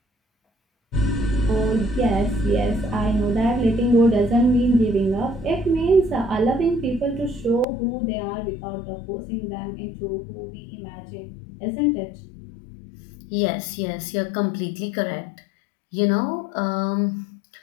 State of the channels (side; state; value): right; drops out; at 7.7 s